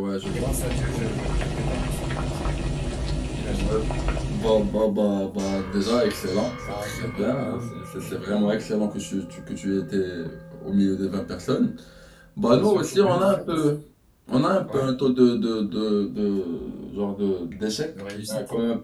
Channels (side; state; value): both; identical; correlation 1.00